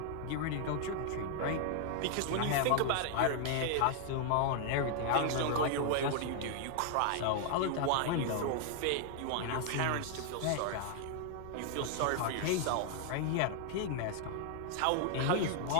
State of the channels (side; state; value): both; different; correlation 0.00